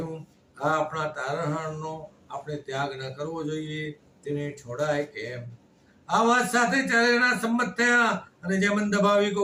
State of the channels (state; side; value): identical; both; correlation 1.00